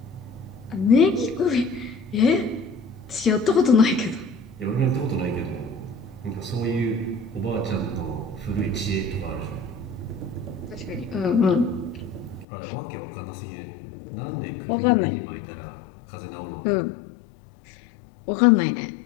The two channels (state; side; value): drops out; right; at 12.5 s